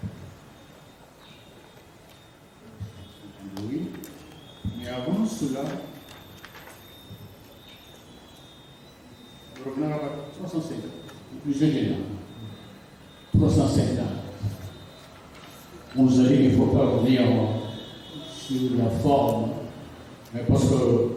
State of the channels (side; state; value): both; identical; correlation 1.00